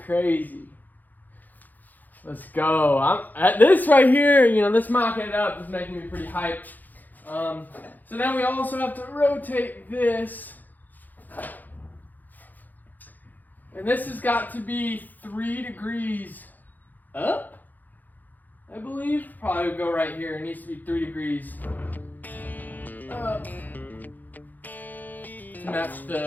crazy. Let's go. I'm at this right here, you know, this mocking it up is making me pretty hyped. So then we also have to rotate this. And this has got to be 3 degrees up, I believe. Probably would go right here. It needs to be 3 degrees up to match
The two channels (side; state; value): right; late; 0.084 ms